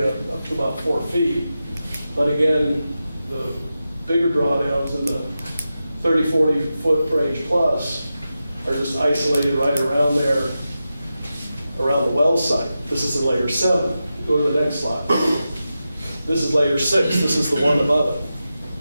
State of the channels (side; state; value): both; inverted; correlation -0.91